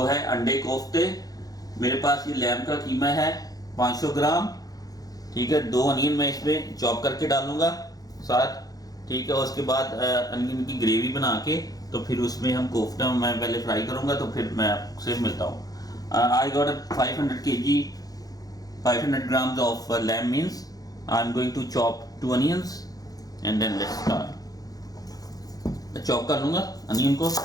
है अंडे कोफ्ते। मेरे पास ये लैम का कीमा है 500 ग्राम, ठीक है। 2 अनियन मैं इसमें चॉप करके डालूंगा साथ, ठीक है। उसके बाद अनियन की ग्रेवी बना के तो फिर उसमें हम कोफ्ता मैं पहले फ्राई करूंगा, तो फिर मैं आपसे मिलता हूँ। I got 500 grams of lamb means I'm going to chop 2 onions and then let's start। मैं चॉप कर लूँगा अनियन को।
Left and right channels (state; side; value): late; right; 0.18 ms